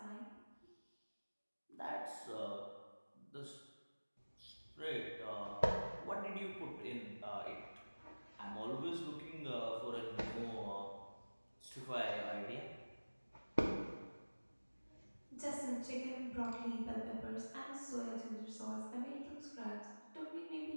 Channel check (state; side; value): inverted; both; correlation -1.00